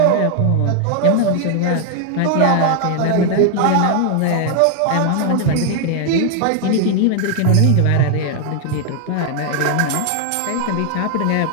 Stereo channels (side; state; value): both; different; correlation 0.00